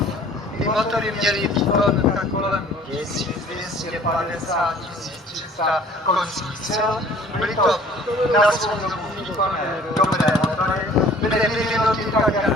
ty motory měly výkon tak kolem 1250-1300 koňských sil, byly to na svou dobu výkonné dobré motory, byly vyvinuty tak, jak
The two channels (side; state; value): both; normal; correlation 0.52